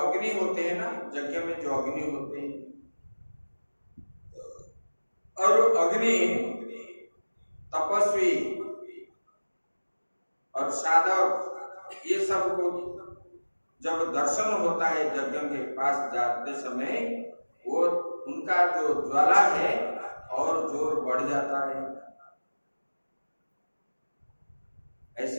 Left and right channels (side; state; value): both; inverted; correlation -1.00